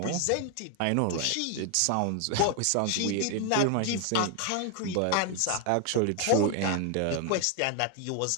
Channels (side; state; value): both; different; correlation 0.01